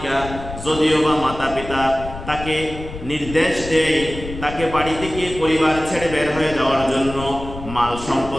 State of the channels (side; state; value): left; noise; rumble, 11 dB below the sound